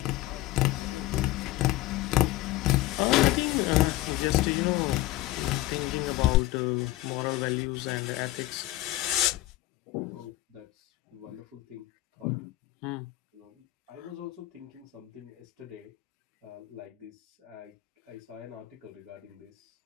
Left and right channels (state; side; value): quieter; right; 16.6 dB